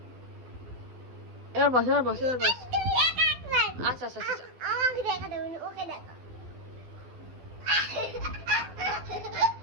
এবার বস, এবার বস, এবার বস। আচ্ছা আচ্ছা আচ্ছা, আমাকে দেখা দেবে, ওকে দেখা।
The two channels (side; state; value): left; late; 12 ms